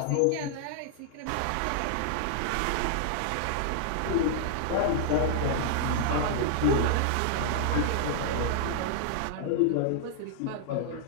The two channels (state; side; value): different; both; correlation -0.01